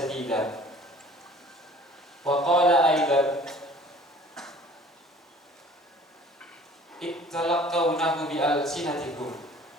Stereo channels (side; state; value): both; normal; correlation 0.49